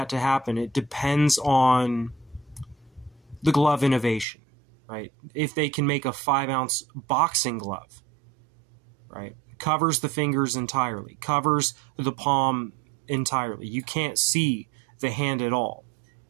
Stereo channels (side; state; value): left; drops out; at 4.2 s